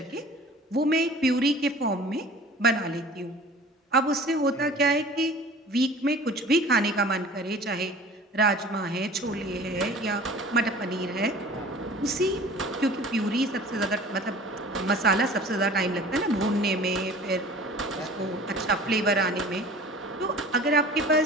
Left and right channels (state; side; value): normal; both; correlation 0.44